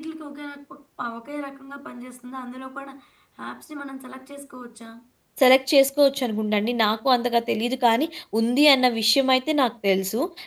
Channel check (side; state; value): both; identical; correlation 1.00